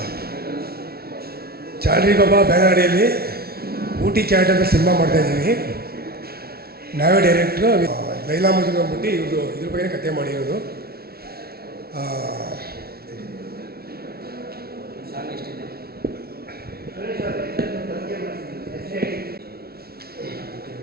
ಚಾಲ್ರಿ ಬಾಬಾ ಬ್ಯಾನರ್ ಅಡಿಯಲ್ಲಿ ಊಟಿ ಕ್ಯಾಟ್ ಅಂತ ಸಿನಿಮಾ ಮಾಡ್ತಾಯಿದ್ದೀವಿ. ನಾವೇ ಡೈರೆಕ್ಟ್ರು. ಲೈಲಾ ಮಜ್ನು ಅಂದ್ಬಿಟ್ಟು ಇವ್ರದ್ದು ಇದ್ರ ಬಗ್ಗೆ ಕತೆ ಮಾಡಿರೋದು.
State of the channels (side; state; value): left; late; 0.44 ms